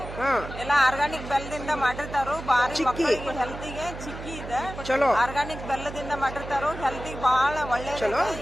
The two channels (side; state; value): right; noise; hum, 11 dB below the sound